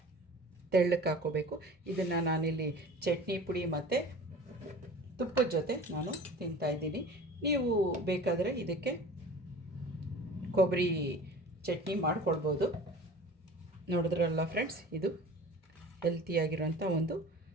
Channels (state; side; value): normal; both; correlation 0.41